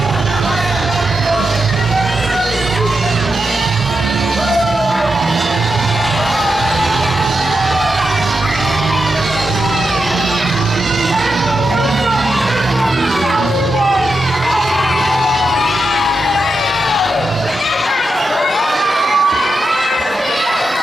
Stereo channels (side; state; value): both; normal; correlation 0.87